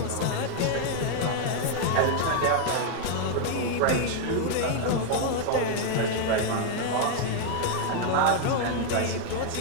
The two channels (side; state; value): both; different; correlation 0.00